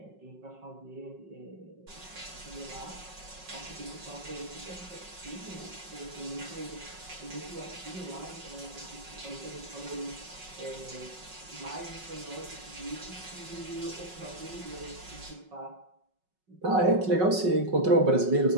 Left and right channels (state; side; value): late; left; 5.4 ms